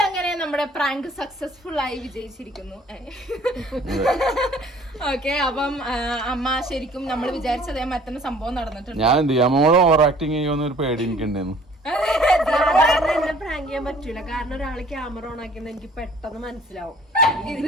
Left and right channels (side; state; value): both; normal; correlation 0.54